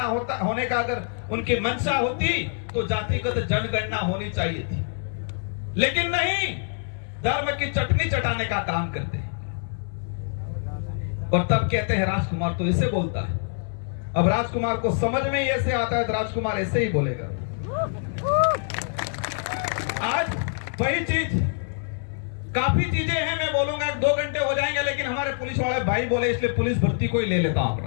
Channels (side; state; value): right; silent; 61 dB below the other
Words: होने का अगर उनकी मंशा होती तो जातिगत जनगणना होनी चाहिए थी, लेकिन नहीं, धर्म की चटनी चटाने का काम करते हैं। और तब कहते हैं राजकुमार तो ऐसे बोलता है। अब राजकुमार को समझ में ही ऐसे आता है तो राजकुमार ऐसे ही बोलेगा। आज वही चीज, काफी चीजें हैं, मैं बोलूंगा 2 घंटे हो जाएंगे, लेकिन हमारे पुलिस वाले भाई बोले इसलिए पुलिस भर्ती को ही ले लेता हूं